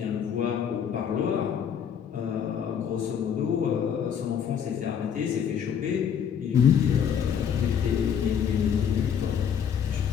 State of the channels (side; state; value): right; quieter; 8.0 dB